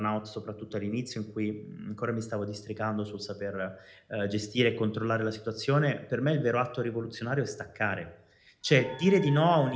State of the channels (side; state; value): both; identical; correlation 1.00